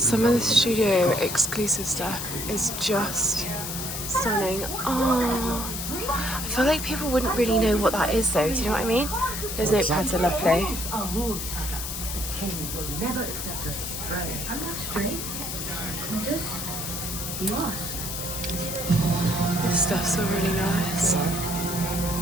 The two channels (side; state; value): left; noise; hiss, 5 dB below the sound